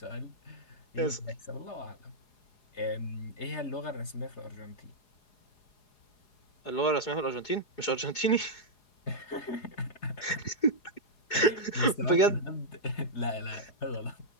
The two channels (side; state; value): right; late; 4.8 ms